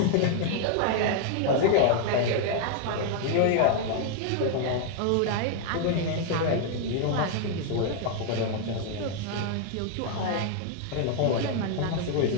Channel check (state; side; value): different; both; correlation 0.00